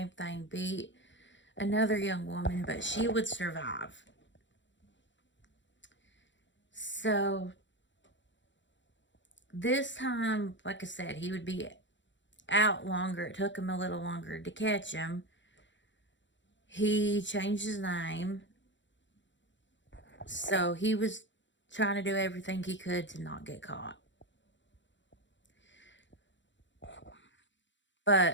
thing, beat another young woman, but she would survive. So this time, like I said, he would be out longer. It took him a little longer to catch him. He changed his name. So he was trying to do everything he could to not get caught.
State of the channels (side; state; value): right; late; 0.54 ms